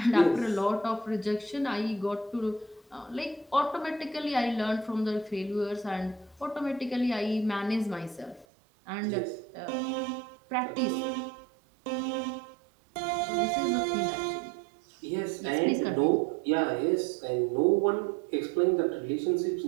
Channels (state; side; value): drops out; left; at 8.5 s